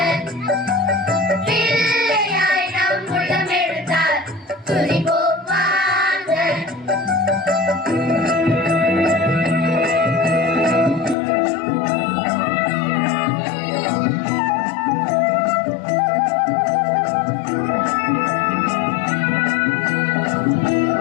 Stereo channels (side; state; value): right; drops out; at 11.2 s